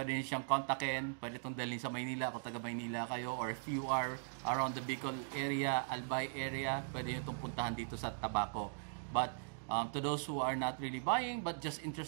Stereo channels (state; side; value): silent; left; digital silence